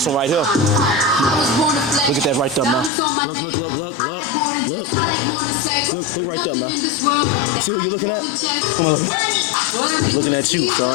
one right here. Look at that right there, man. Look. Look right there, man. You see who you looking at? He's looking at you,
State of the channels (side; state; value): right; drops out; at 2.9 s